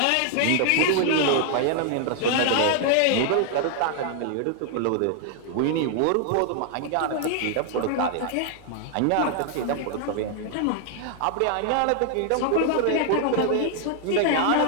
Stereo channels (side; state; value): both; different; correlation 0.00